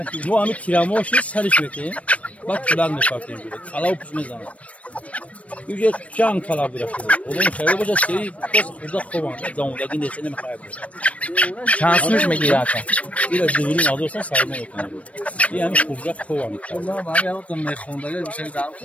Bu amik kiramoşu sarış bekleyin. Bak şuradan da farklı böyle. Kala upuşmaz zaman. Yüce can kala bırakıyor. Onun şöyle boca şeyi burada kovan. Damudaki desene mi kaybeder? Şansmış mı ki zaten? Biraz düğünün alırsan sayma okunuyor. Yani kuracak kovan. Allah'ım abi yaptım ne kondayla bir şey daha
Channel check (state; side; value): late; right; 0.065 ms